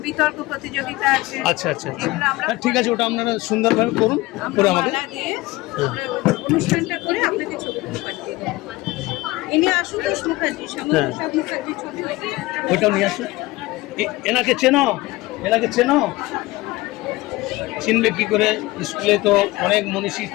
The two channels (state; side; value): quieter; right; 20.1 dB